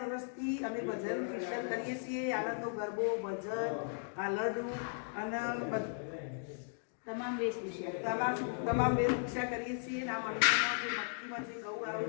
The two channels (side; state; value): right; silent; digital silence